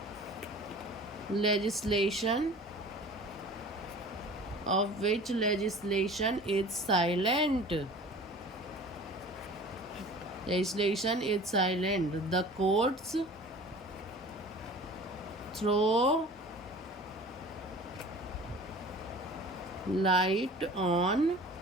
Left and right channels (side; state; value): both; normal; correlation 0.43